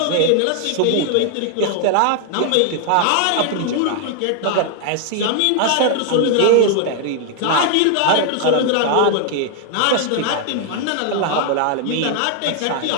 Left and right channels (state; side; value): different; both; correlation 0.00